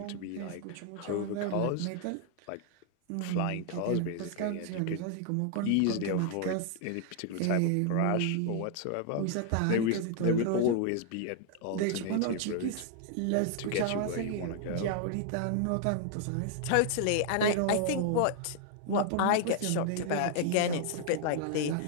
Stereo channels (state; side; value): different; both; correlation 0.00